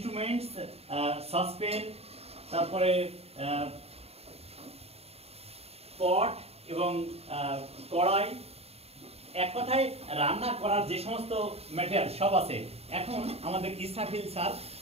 সসপেন, তারপরে পট এবং কড়াই, এক কথায় রান্না করার যে সমস্ত ম্যাটেরিয়াল সব আছে। এখন আমাদের ইসরাফিল স্যার,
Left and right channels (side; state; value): left; late; 0.29 ms